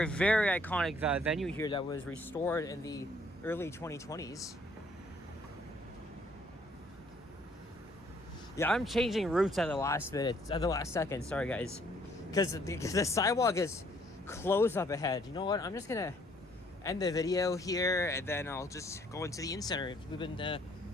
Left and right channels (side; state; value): both; normal; correlation 0.64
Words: very iconic venue here that was restored in the early 2020s. Yeah, I'm changing routes at the last second. Sorry, guys. Because the sidewalk is closed up ahead. You know what? I'm just going to end the video here, and then I'll just go into the in-center. We've been